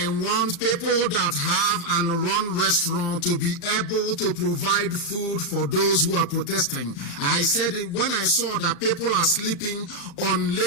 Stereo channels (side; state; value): right; late; 35 ms